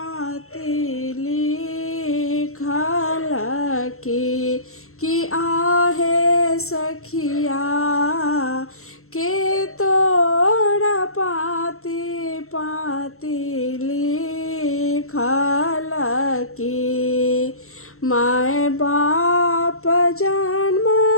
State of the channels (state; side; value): late; right; 0.63 ms